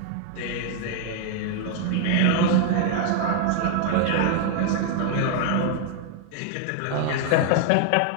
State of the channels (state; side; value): different; both; correlation 0.00